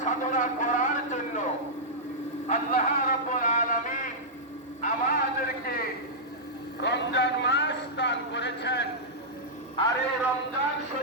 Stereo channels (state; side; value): normal; both; correlation -0.11